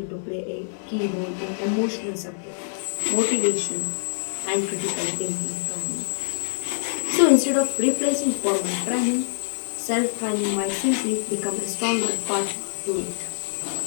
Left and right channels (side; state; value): right; silent; digital silence